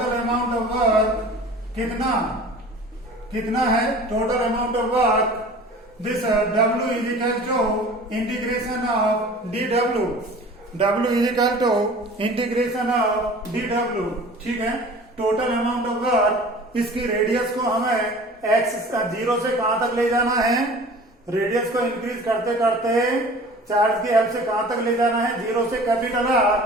है, total amount of work, this W is equal to integration of dW, ठीक है, total amount of work, इसकी रेडियस को हमें x 0 से कहां तक ले जाना है, रेडियस को इंक्रीज करते करते चार्ज की हेल्प से कहां तक ले जाना है, 0 से कैपिटल R,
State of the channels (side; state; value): both; normal; correlation 0.43